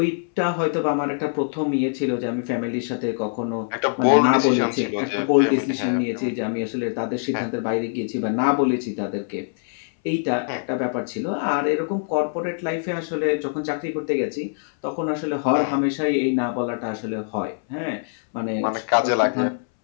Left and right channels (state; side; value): silent; right; 63 dB below the other